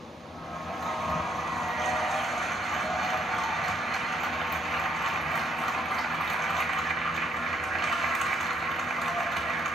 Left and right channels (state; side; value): normal; both; correlation 0.70